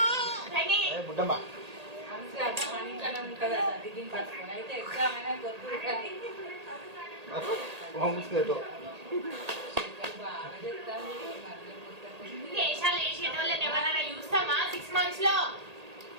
బుడ్డమ్మ అయితే ఎగ్జామ్ అయినా కొద్దు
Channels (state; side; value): late; left; 1.8 ms